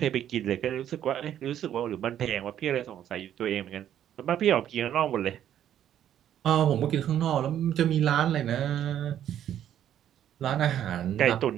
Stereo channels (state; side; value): quieter; left; 10.6 dB